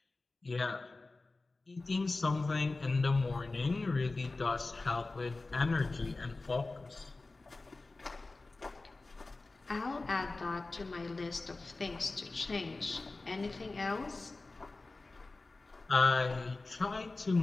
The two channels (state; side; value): quieter; right; 3.4 dB